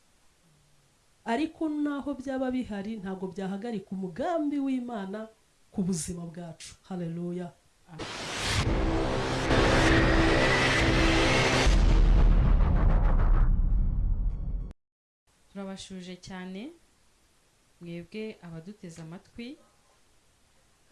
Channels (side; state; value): both; identical; correlation 1.00